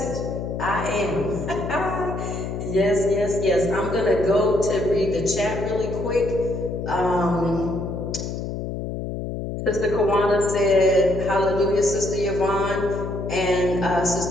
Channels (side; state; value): left; noise; hum, 5 dB below the sound